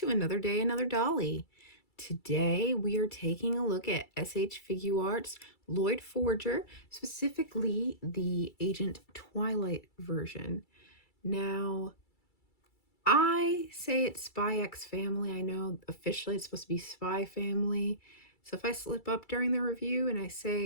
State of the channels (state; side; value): late; right; 2.3 ms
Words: another day, another dolly. Today we are taking a look at SH Figuarts Loid Forger, specifically the Agent Twilight version. Now, I say it's Spy X Family. I know officially it's supposed to be Spy Family. So if I slip up during the review and I